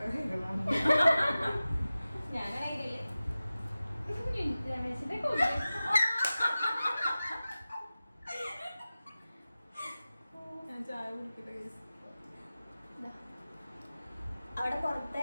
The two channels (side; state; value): both; inverted; correlation -0.96